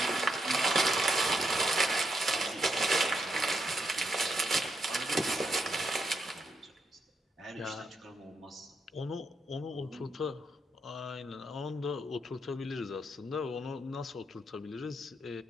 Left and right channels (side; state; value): both; normal; correlation 0.80